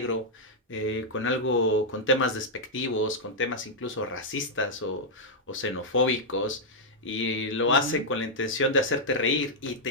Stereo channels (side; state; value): both; normal; correlation -0.05